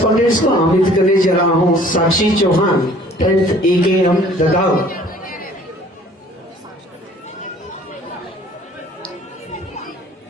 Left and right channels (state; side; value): normal; both; correlation 0.54